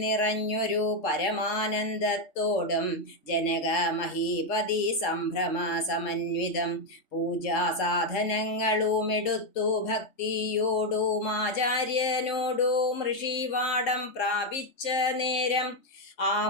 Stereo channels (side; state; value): right; late; 3.7 ms